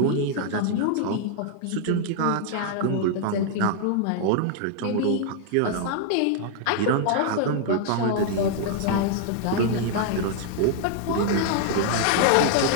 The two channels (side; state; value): both; different; correlation 0.00